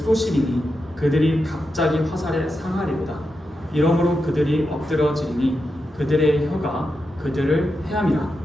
그들이 갑자기 화살에 상하리로다. 이러므로 그들이 엎드러지리니 그들의 혀가 그들을 해함이라.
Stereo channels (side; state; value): both; normal; correlation 0.88